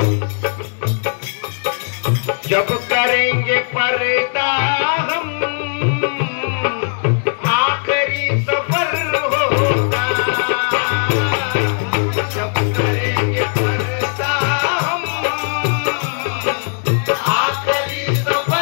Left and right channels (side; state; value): right; silent; 60 dB below the other